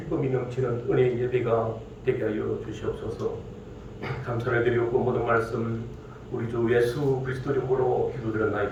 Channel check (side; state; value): both; identical; correlation 1.00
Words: 넘치는 은혜의 예배가 되게 하여 주시옵소서. 감사를 드리고 모든 말씀 우리 주 예수 그리스도 이름으로